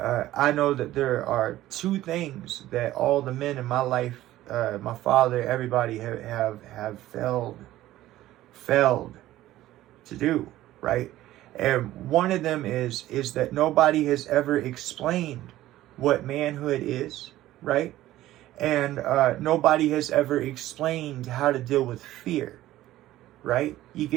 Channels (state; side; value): quieter; left; 14.9 dB